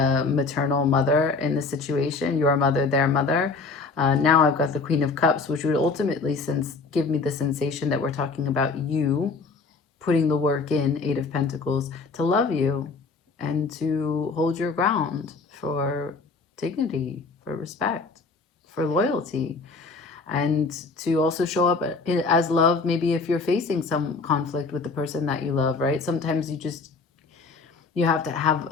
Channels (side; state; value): right; quieter; 4.2 dB